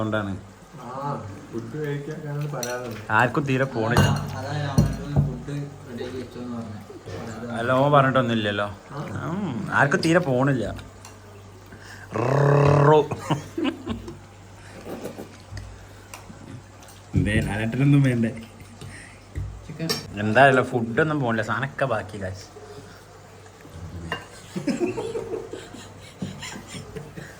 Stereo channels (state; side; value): identical; both; correlation 1.00